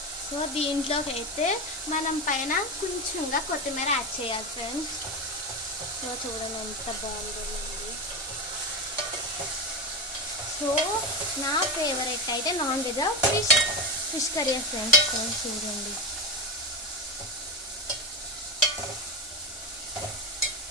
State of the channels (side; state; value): both; normal; correlation 0.18